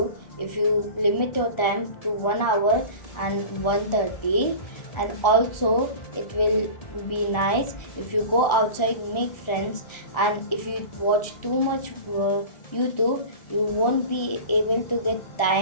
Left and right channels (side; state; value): right; late; 1.4 ms